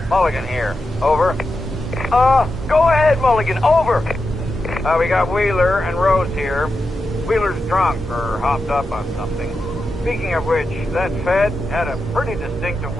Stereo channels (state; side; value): normal; both; correlation 0.89